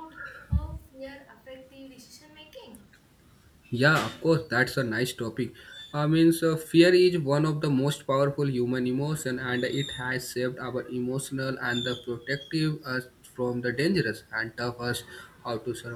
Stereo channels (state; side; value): identical; both; correlation 1.00